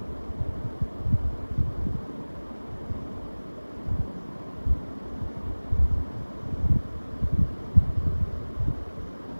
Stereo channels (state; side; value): inverted; both; correlation -1.00